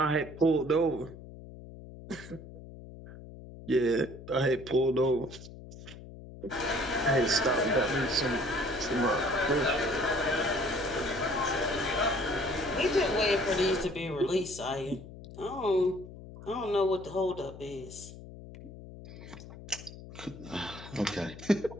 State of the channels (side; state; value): left; noise; hum, 15 dB below the sound